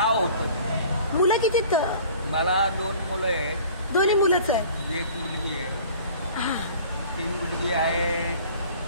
होतं. मुलं किती? मला 2 मुलं आहेत. दोन्ही मुलंच आहेत? 1 मुलगी आहे. हा 3 मुलगी आहे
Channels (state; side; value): inverted; both; correlation -0.47